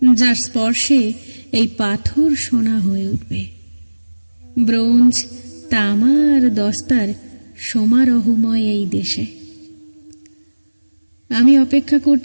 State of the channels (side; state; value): both; inverted; correlation -1.00